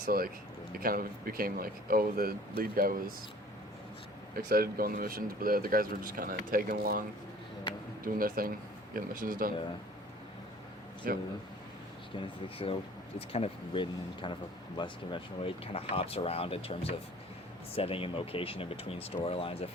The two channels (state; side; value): normal; both; correlation 0.49